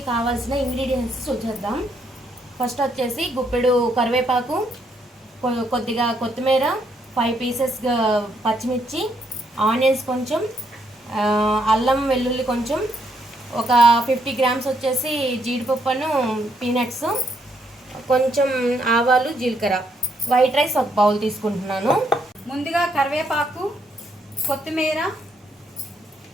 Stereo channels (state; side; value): normal; both; correlation 0.74